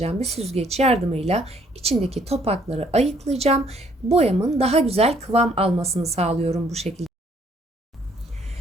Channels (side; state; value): both; normal; correlation 0.64